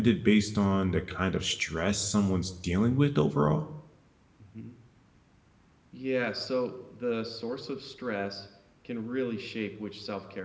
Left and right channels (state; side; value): identical; both; correlation 1.00